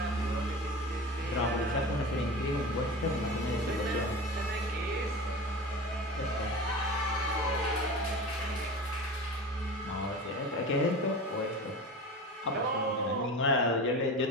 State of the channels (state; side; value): normal; both; correlation 0.32